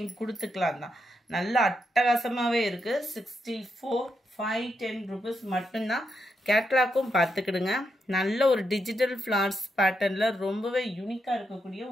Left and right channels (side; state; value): both; normal; correlation 0.82